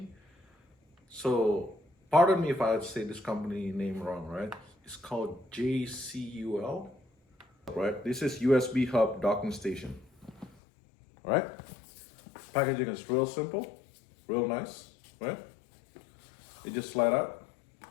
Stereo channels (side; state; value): right; drops out; at 10.6 s